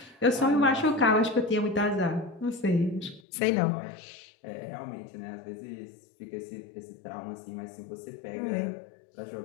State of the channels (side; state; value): right; drops out; at 3.2 s